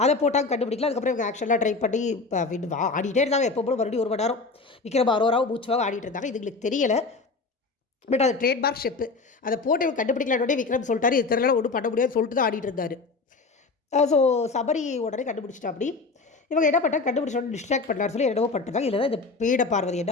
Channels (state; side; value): quieter; right; 4.0 dB